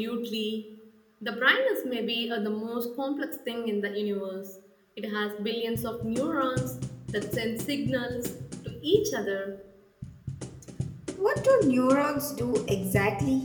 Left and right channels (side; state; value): both; identical; correlation 1.00